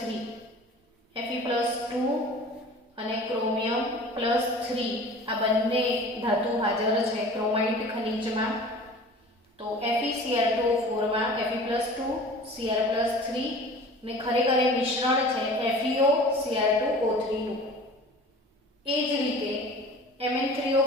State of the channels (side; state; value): both; normal; correlation 0.42